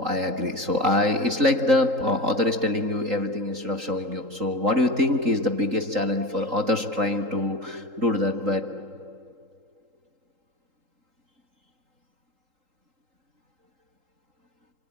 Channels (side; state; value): left; late; 3.8 ms